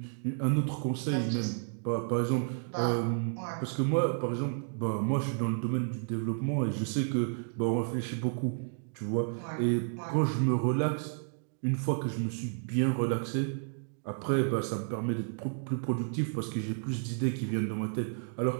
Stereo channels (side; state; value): left; silent; digital silence